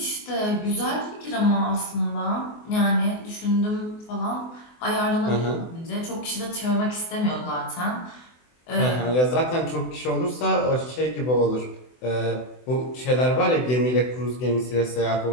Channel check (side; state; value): right; late; 24 ms